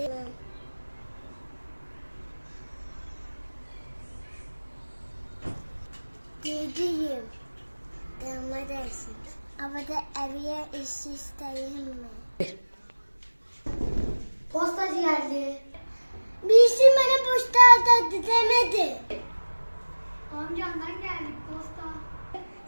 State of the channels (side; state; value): both; inverted; correlation -1.00